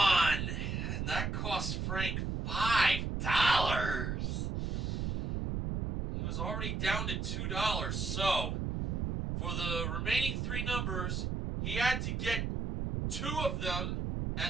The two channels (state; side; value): noise; right; rumble, 1 dB below the sound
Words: and that cost Frank $5. He was already down to $2, so for the remaining 3 numbers, he had to get 2 of them